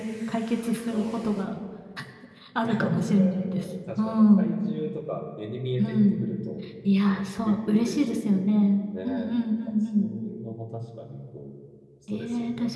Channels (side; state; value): both; identical; correlation 1.00